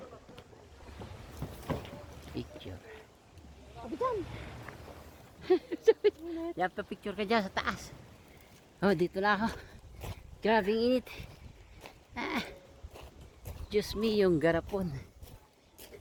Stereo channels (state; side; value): identical; both; correlation 1.00